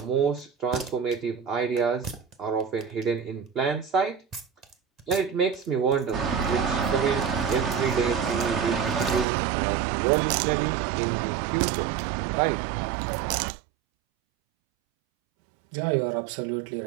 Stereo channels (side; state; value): left; drops out; at 9.2 s